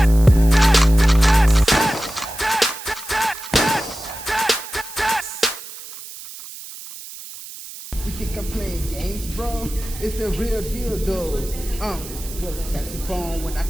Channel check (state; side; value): noise; right; hiss, 13 dB below the sound